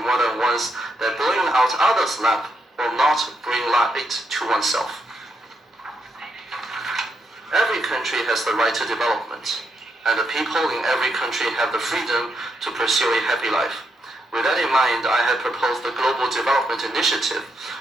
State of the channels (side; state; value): both; normal; correlation 0.80